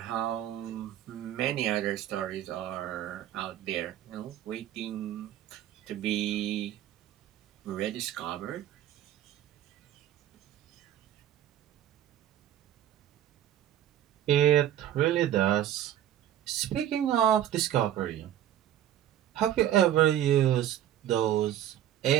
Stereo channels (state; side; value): quieter; left; 11.6 dB